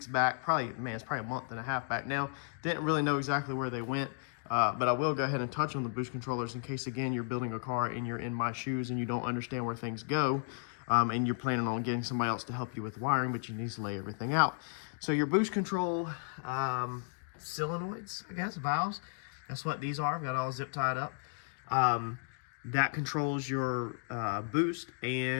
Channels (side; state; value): right; silent; digital silence